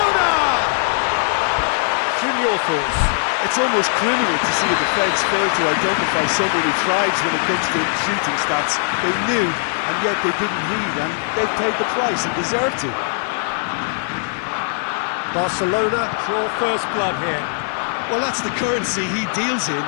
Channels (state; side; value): silent; right; 66 dB below the other